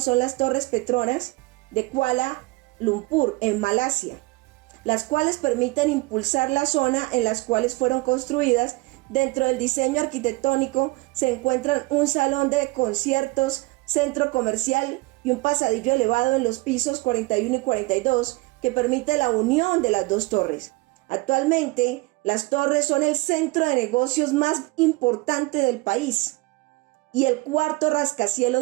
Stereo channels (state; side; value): quieter; left; 23.6 dB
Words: son las Torres Petronas de Kuala Lumpur, en Malasia, las cuales permiten impulsar la zona en las cuales fueron construidas. Dentro del diseño arquitectónico se encuentran un salón de conciertos, centro comercial y un pasadillo elevado en los pisos 41 y 42 que permite la unión de las dos torres. Actualmente, las torres son el centro de negocios más importante del país y el cuarto